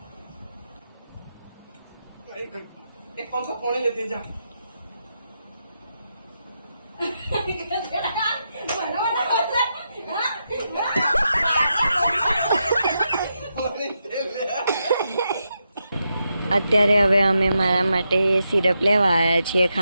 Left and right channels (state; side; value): inverted; both; correlation -0.85